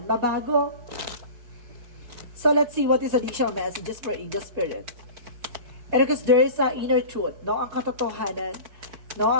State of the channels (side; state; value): left; late; 4.6 ms